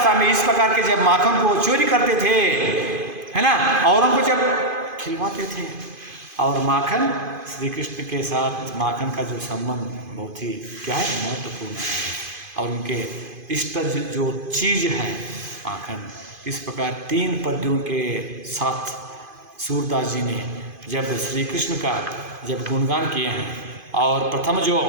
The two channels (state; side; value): late; left; 2.5 ms